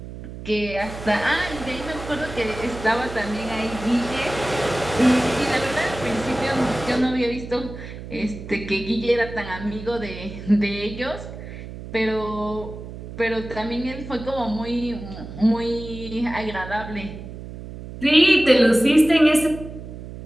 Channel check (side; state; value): right; noise; hum, 12 dB below the sound